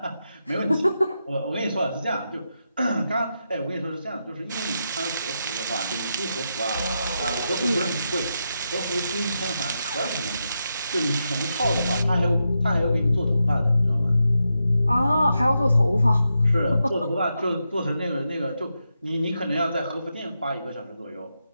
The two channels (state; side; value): inverted; both; correlation -0.86